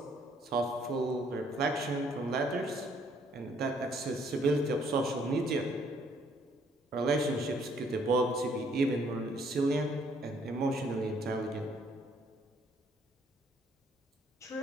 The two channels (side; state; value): both; normal; correlation 0.65